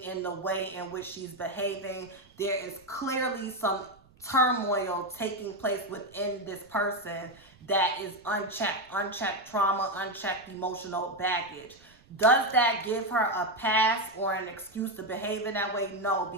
in the way in which she's behaving, there is clearly some turmoil taking place within this person that is unchecked trauma, unchecked emotional baggage. Does that give her a pass or an excuse to behave in that way? No,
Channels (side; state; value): right; noise; rumble, 28 dB below the sound